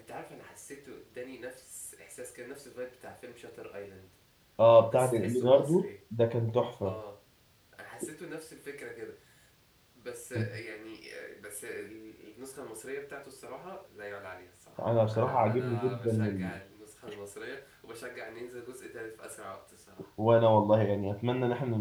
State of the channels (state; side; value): identical; both; correlation 1.00